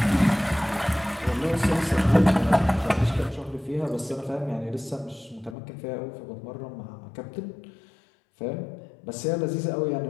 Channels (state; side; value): drops out; right; at 5.6 s